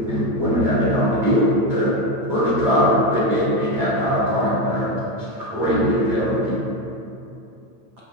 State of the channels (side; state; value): left; late; 9.0 ms